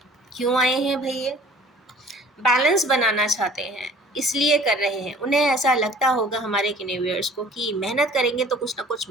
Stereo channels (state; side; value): normal; both; correlation 0.50